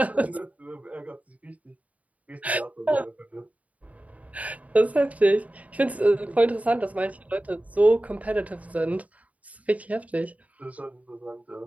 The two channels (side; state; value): left; late; 0.070 ms